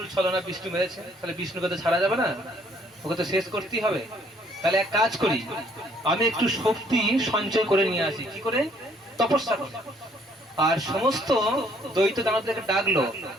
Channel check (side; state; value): both; normal; correlation 0.63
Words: ছলনা বিষ্ণু মেরেছে, তাহলে বিষ্ণুকে তো ছাড়া যাবে না, ওকে তো শেষ করতেই হবে। তাহলে এক কাজ করি, আমি একটু শক্তি সঞ্চয় করে নিয়ে আসি। কি করে? তপস্যা করে। আর সমস্ত দ্বৈত দানবদেরকে ডাকলো,